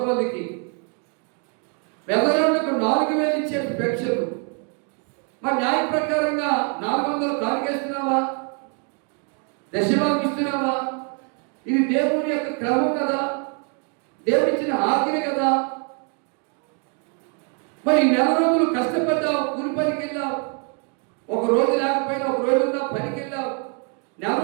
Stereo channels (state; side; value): quieter; left; 39.3 dB